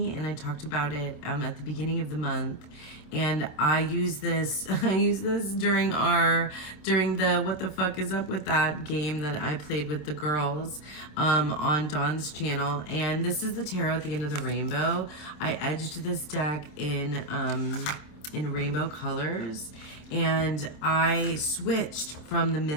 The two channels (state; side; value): late; right; 27 ms